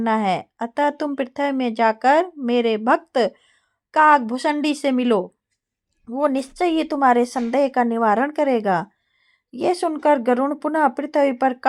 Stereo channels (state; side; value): identical; both; correlation 1.00